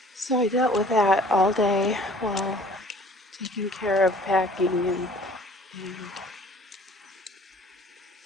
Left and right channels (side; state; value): both; normal; correlation 0.51